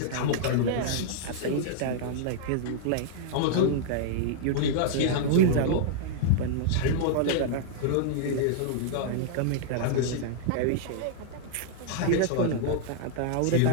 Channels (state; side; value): different; both; correlation -0.01